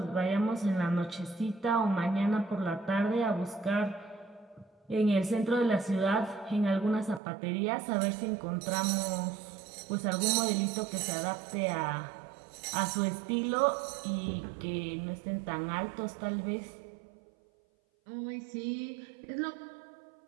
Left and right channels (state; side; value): drops out; left; at 7.2 s